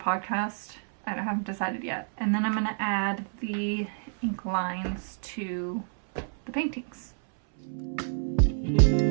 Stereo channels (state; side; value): silent; left; 59 dB below the other